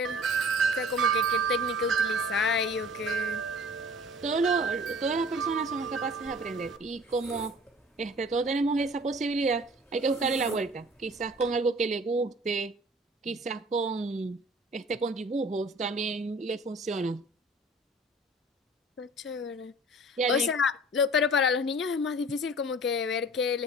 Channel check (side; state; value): both; normal; correlation 0.48